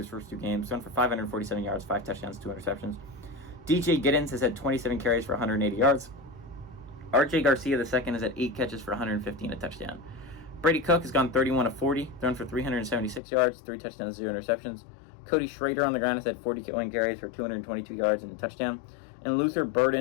first 2 games. Gone for 547 yards, 5 touchdowns, 2 interceptions. DJ Giddens has had 27 carries for 180 yards. RJ Garcia II has had 8 catches for 115 and a touchdown. Brady Cook has gone 31-40, thrown for 376 yards, 3 touchdowns, 0 interceptions. Cody Schrader on the ground has had 41 carries for 222 yards and a touchdown. And Luther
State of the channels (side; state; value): right; drops out; at 13.2 s